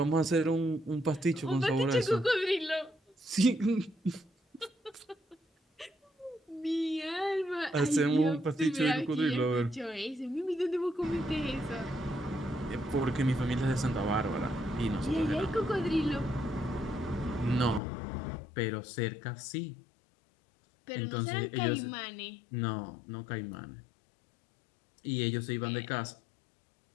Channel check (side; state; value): right; drops out; at 17.8 s